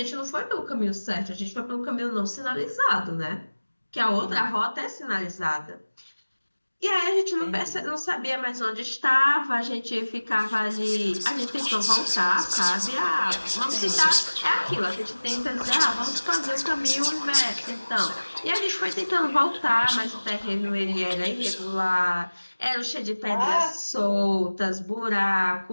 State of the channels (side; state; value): both; inverted; correlation -1.00